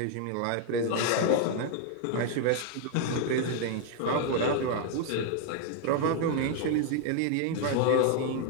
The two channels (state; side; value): different; both; correlation 0.00